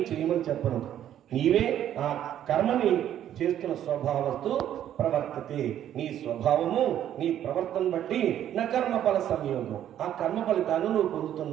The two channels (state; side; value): quieter; left; 11.0 dB